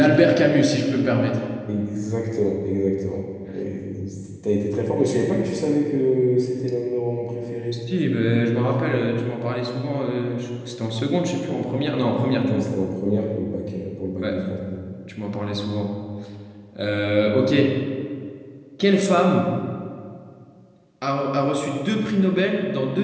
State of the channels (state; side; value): identical; both; correlation 1.00